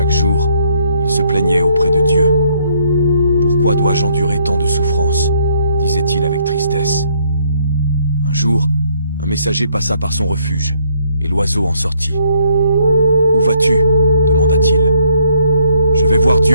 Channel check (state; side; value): inverted; both; correlation -0.68